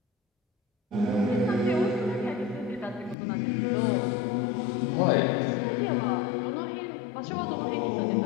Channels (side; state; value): right; drops out; at 3.2 s